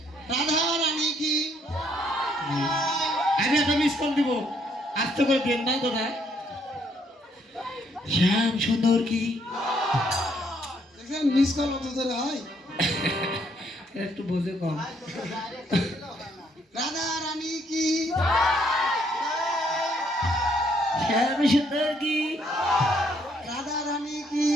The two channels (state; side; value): normal; both; correlation 0.69